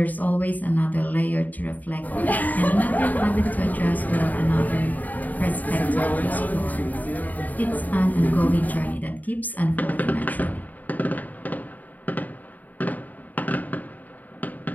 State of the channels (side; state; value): right; late; 0.081 ms